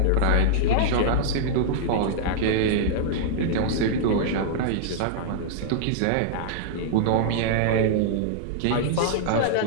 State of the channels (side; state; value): both; different; correlation -0.01